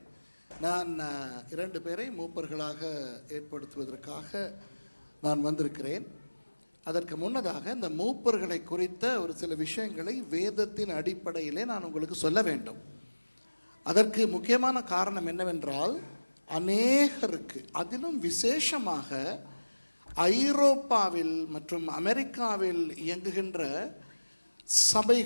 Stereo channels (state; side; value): inverted; both; correlation -1.00